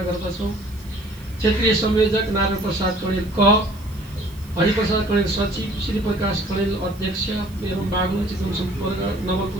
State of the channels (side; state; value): right; noise; hiss, 24 dB below the sound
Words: गर्दछौँ। क्षेत्रीय संयोजक नारायण प्रसाद कणेल क, हरिप्रसाद कणेल सचिव, श्री प्रकाश कणेल अध्यक्ष एवं बागलुङ चितवन सम्पर्क